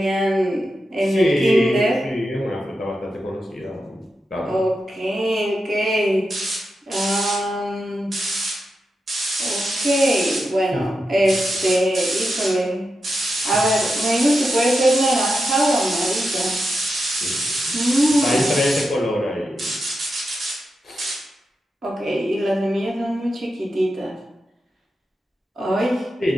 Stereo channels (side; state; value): both; normal; correlation 0.88